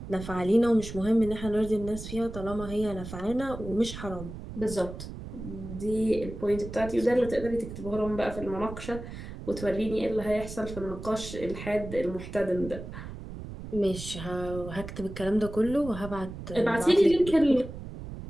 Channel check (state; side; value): noise; right; rumble, 10 dB below the sound